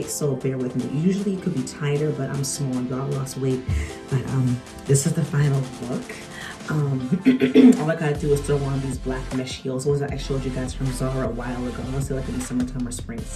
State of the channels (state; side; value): identical; both; correlation 1.00